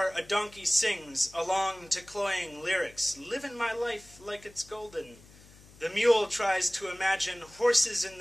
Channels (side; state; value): left; noise; hum, 23 dB below the sound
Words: a donkey sings along to cloying lyrics, "Living my life like it's golden." The mule tries to imagine horses in